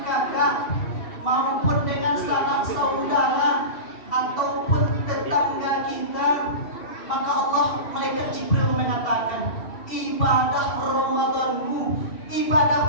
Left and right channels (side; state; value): right; late; 2.7 ms